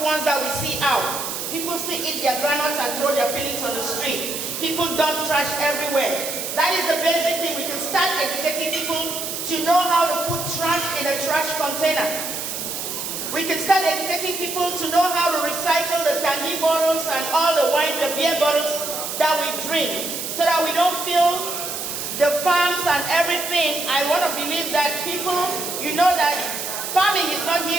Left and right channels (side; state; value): right; noise; hiss, 5 dB below the sound